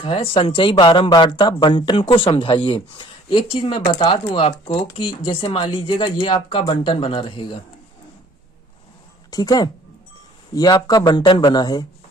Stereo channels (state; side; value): normal; both; correlation 0.54